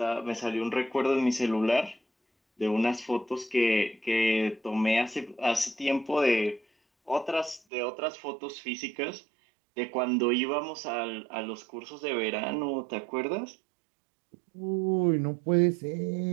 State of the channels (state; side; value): drops out; left; at 7.6 s